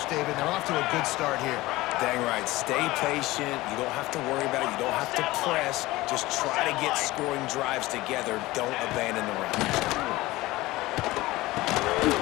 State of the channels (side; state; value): right; quieter; 19.0 dB